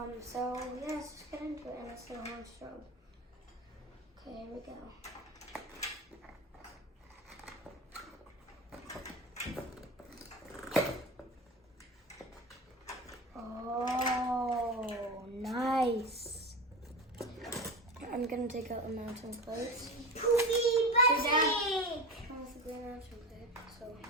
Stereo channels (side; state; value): both; normal; correlation 0.26